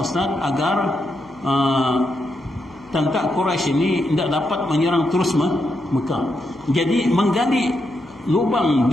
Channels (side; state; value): left; noise; hum, 28 dB below the sound